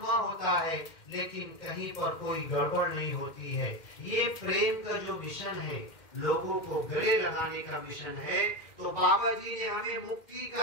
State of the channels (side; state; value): right; late; 2.1 ms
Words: होता है, लेकिन कहीं पर कोई गड़बड़ नहीं होती है। ये प्रेम का जो मिशन है, लोगों को गले लगाने का मिशन है, तो बाबा जी ने हमें मुक्ति